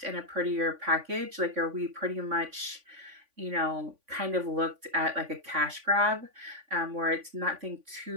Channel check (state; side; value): late; left; 3.5 ms